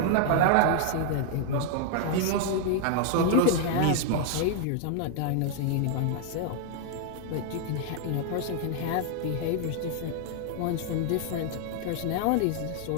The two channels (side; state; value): both; different; correlation 0.00